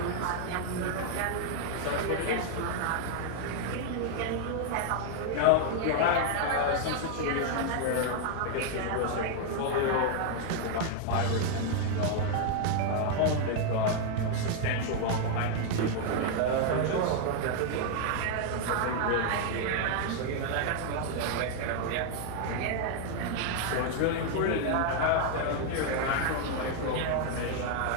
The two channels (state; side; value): different; both; correlation 0.00